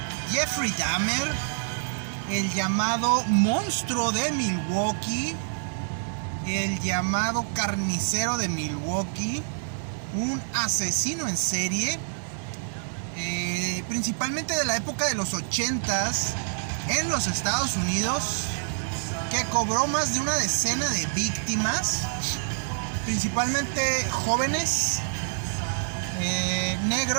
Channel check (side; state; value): left; silent; digital silence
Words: Jeffrey Dahmer, el llamado monstruo de Milwaukee, el llamado carnicero de Milwaukee, un asesino en serie, principalmente de la época de los 80s en los Estados Unidos, que cobró más de una decena de víctimas, principalmente jóvenes,